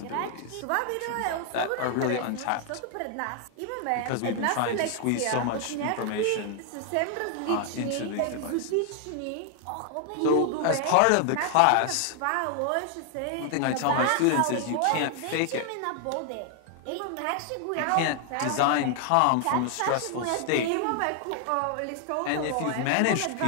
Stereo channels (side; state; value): both; different; correlation 0.00